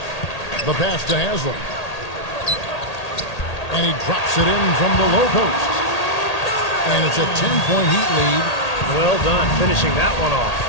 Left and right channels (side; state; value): right; late; 1.8 ms